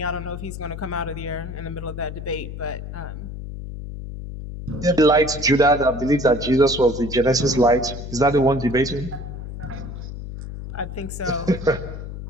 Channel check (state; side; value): noise; left; hum, 9 dB below the sound